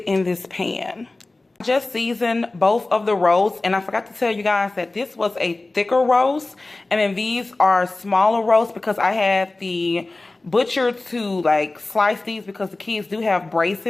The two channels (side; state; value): right; quieter; 3.1 dB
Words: in this pan. I just seasoned both of the roasts, and I forgot to tell you guys that this was a thicker roast, and then these are smaller roasts because I had the butcher to like slice these because the kids do have